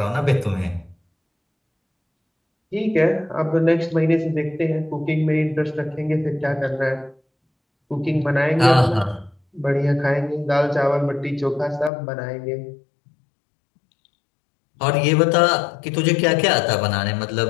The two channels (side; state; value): right; drops out; at 11.9 s